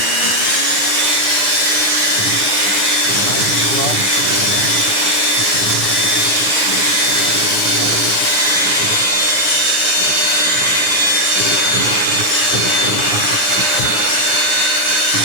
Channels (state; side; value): late; left; 9.8 ms